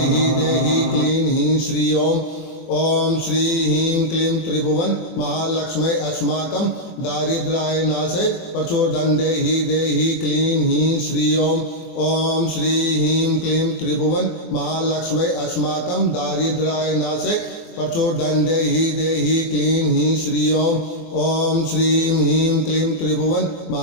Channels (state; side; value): late; right; 24 ms